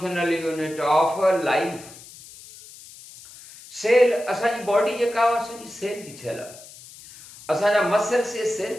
unit of life. Cell असांजी body जेका असांजी cell जी ठहियल आहे। असांजा muscles ये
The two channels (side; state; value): left; noise; hiss, 19 dB below the sound